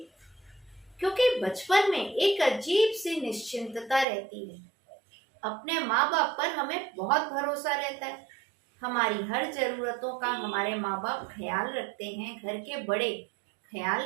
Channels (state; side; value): drops out; left; at 4.0 s